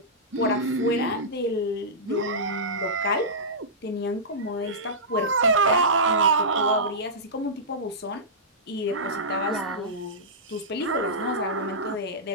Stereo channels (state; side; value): normal; both; correlation -0.16